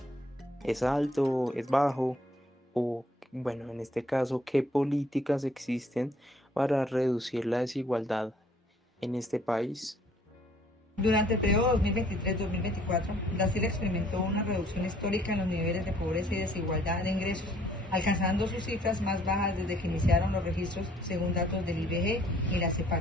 ¿Es alto? ¿Es bajo? O, bueno, en este caso, ¿qué políticas existen para reducir la desigualdad en este país? Durante el periodo 2023-2024, Brasil experimentó una reducción histórica en los niveles de pobreza y desigualdad de ingresos, alcanzando sus cifras más bajas desde que iniciaron los registros según datos del IBGE y la CEPAL.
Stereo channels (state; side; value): normal; both; correlation 0.61